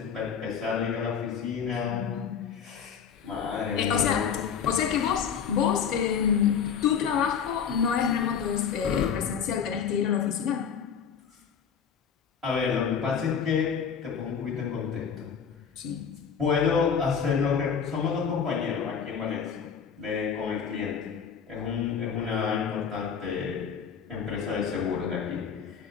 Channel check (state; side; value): quieter; right; 7.1 dB